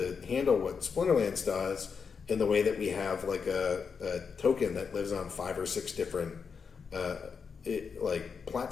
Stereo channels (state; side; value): quieter; right; 5.9 dB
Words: handle what Splinterlands does in the way that we have like a token that lives on 5 or 6 different